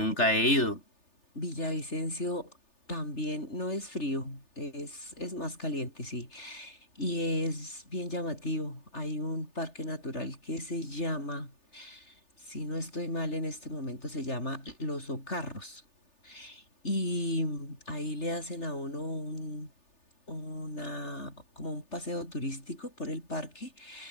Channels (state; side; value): late; right; 3.4 ms